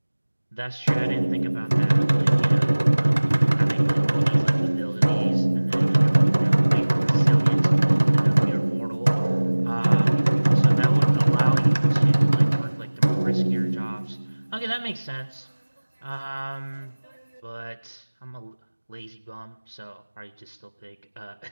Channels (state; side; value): inverted; both; correlation -1.00